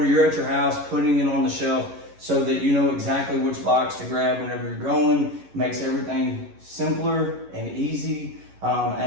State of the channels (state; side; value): late; left; 11 ms